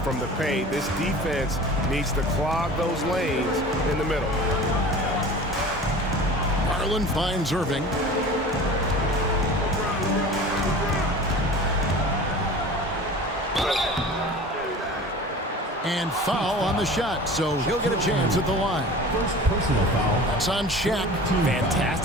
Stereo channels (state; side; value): normal; both; correlation 0.39